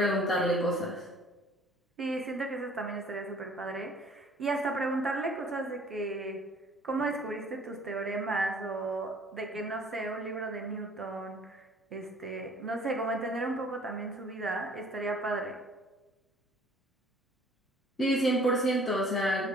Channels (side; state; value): both; normal; correlation 0.54